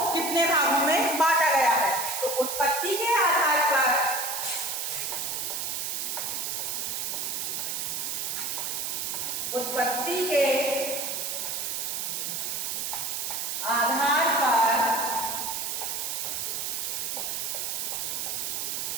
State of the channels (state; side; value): noise; right; hiss, 2 dB below the sound